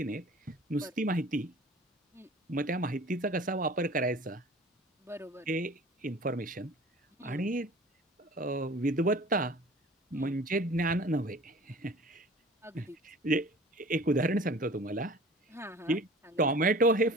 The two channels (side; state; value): both; normal; correlation 0.44